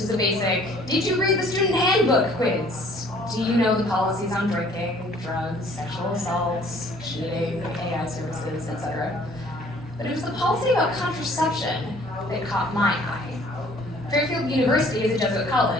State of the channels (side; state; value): both; normal; correlation 0.56